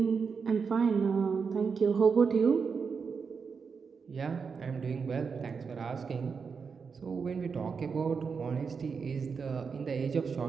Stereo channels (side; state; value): left; quieter; 5.6 dB